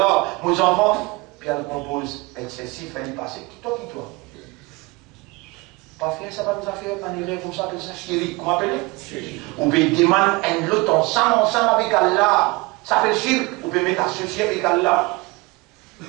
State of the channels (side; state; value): left; quieter; 24.6 dB